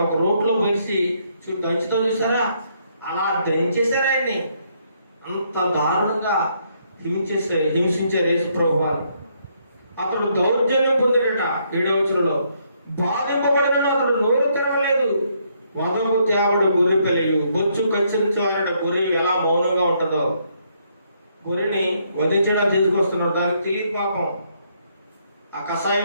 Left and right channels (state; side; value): inverted; both; correlation -0.72